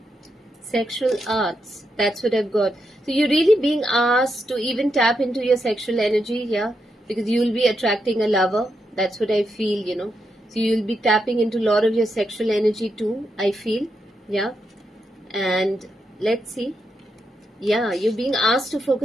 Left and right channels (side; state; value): both; normal; correlation 0.83